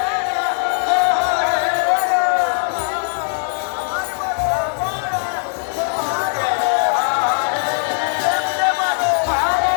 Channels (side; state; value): right; silent; digital silence